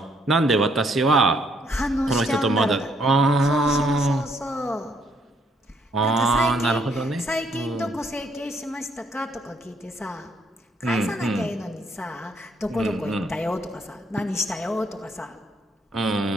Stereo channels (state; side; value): normal; both; correlation 0.70